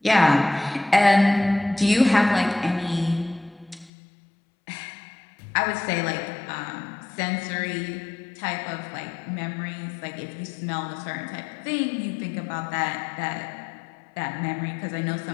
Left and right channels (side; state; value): right; drops out; at 3.9 s